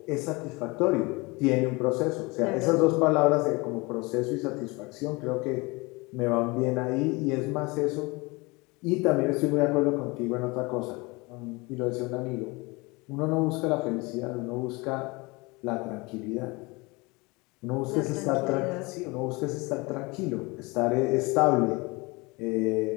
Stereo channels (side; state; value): right; quieter; 25.4 dB